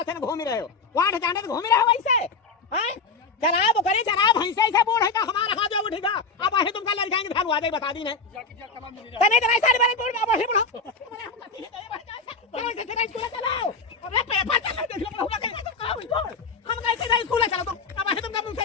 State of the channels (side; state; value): right; quieter; 4.2 dB